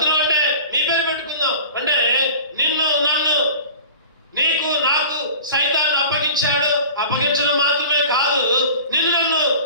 అంటే నీ పేరు పెట్టుకుందాం. అంటే నిన్ను నన్ను నీకు నాకు సైతాన్ని అప్పగించాడు. అప్పగించడం మాత్రమే కాదు, నిన్ను నన్ను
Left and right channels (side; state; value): both; inverted; correlation -0.40